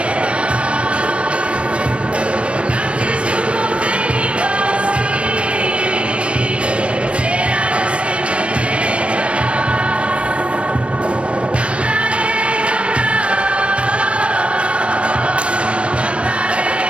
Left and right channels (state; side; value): late; left; 0.060 ms